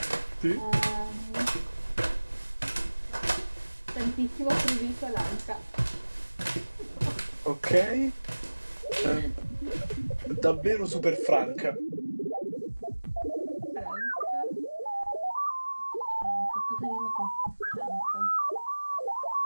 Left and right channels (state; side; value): inverted; both; correlation -1.00